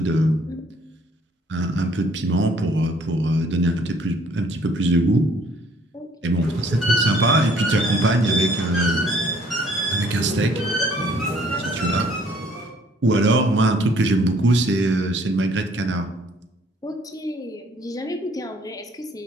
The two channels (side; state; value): both; normal; correlation 0.60